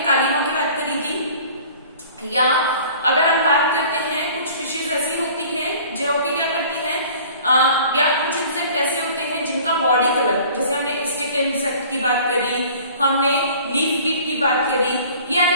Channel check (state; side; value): inverted; both; correlation -0.48